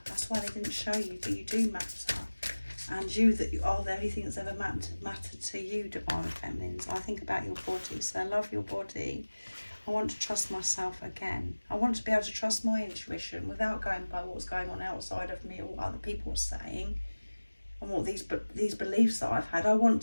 That's why they didn't show you, but you do matter. And you are the only thing that's ever mattered to you, divine feminines. I think about your body, so I love your body. I want to trust myself again. I want to be able to trust my intuition without going by what's going on outside of me or what other people are saying and what these beliefs that I've had. I want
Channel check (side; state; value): both; inverted; correlation -1.00